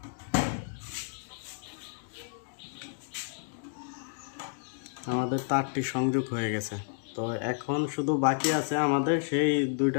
আমাদের তারটি সংযোগ হয়ে গেছে। তো এখন শুধু বাকি আছে আমাদের সেই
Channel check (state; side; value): silent; right; digital silence